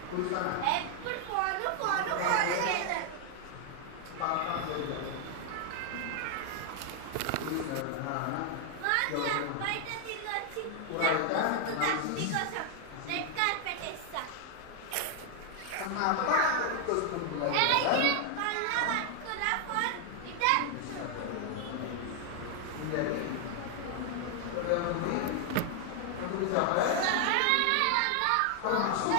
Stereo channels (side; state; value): both; different; correlation 0.00